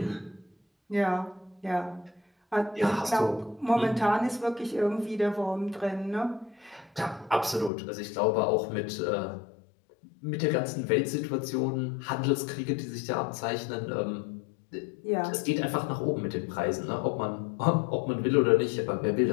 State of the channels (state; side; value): drops out; right; at 7.7 s